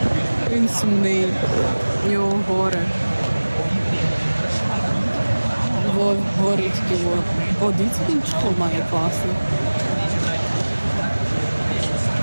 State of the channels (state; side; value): inverted; both; correlation -1.00